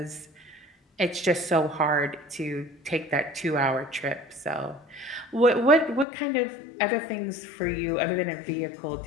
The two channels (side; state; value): right; drops out; at 6.1 s